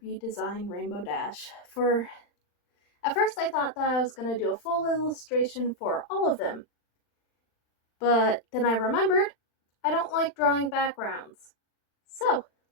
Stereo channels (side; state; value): right; late; 39 ms